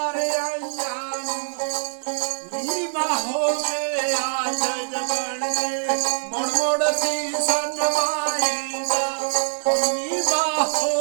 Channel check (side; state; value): left; silent; digital silence